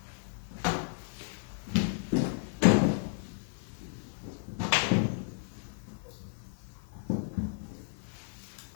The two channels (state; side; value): silent; right; digital silence